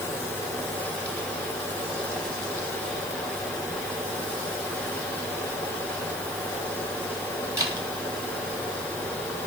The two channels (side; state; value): left; noise; hiss, 9 dB below the sound